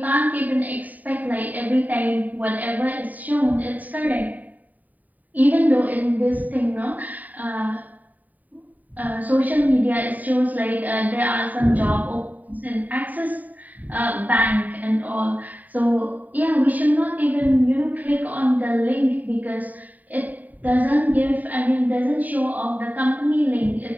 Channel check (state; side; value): late; left; 0.079 ms